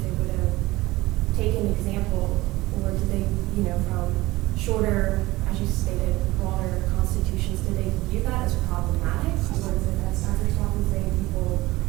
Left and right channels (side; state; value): left; quieter; 19.2 dB